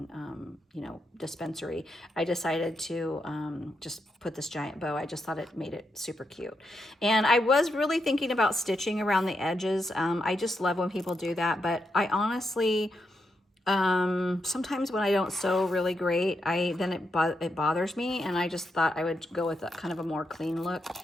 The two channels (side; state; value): both; normal; correlation 0.83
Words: you know, dispensary, I decided to just put this giant bow. I just thought it made it super cute. And I was really thinking about stitching around the edges. I just love when people do that, but I honestly, sometimes when I don't sew really great, then it bothers me, and I just thought I would go with a kind of a more clean look,